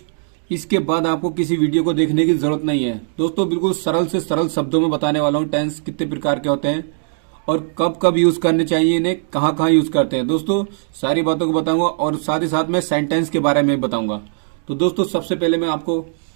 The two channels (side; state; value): left; silent; digital silence